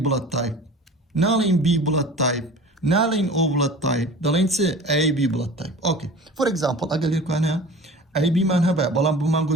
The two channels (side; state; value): both; normal; correlation 0.40